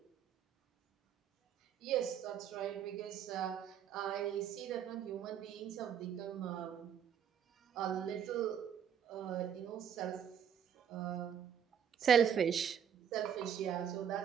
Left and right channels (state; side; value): quieter; left; 8.5 dB